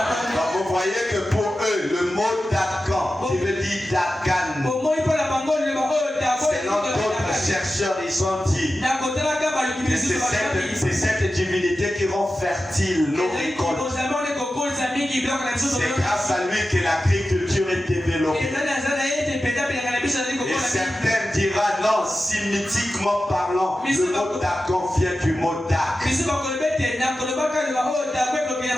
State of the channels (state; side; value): normal; both; correlation 0.93